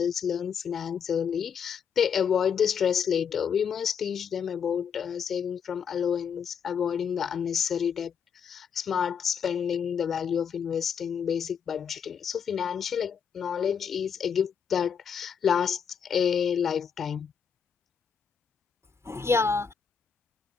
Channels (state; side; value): quieter; right; 7.1 dB